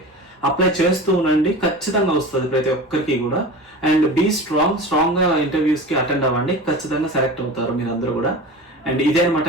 అప్లై చేస్తూ ఉండండి. ఖచ్చితంగా వస్తుంది ప్రతి ఒక్కరికి కూడా. అండ్ బీ స్ట్రాంగ్ గా ఇంటర్వ్యూస్ కి అటెండ్ అవ్వండి. ఖచ్చితంగా సెలెక్ట్ అవుతారు మీరు అందరూ కూడా. అండ్ ఇదే అనమాట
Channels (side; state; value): both; normal; correlation 0.33